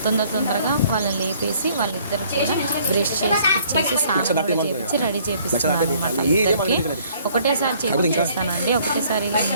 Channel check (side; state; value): both; inverted; correlation -0.60